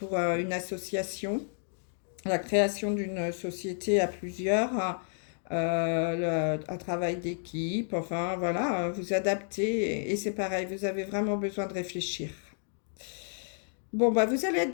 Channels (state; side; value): silent; right; digital silence